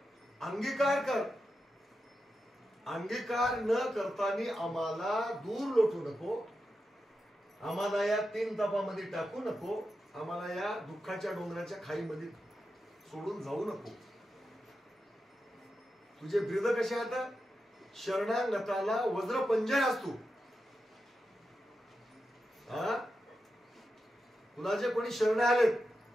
अंगीकार कर. अंगीकार न करताना आम्हाला दूर लोटू नको. आम्हाला या 3 तापामध्ये टाकू नको. आम्हाला या दुःखाच्या डोंगराच्या खाईमध्ये सोडून जाऊ नको. तुझे ब्रीद कसे आता शरणागताला वज्र पंजय असतो. तुला जे कोणी शरण आलेत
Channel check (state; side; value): normal; both; correlation 0.89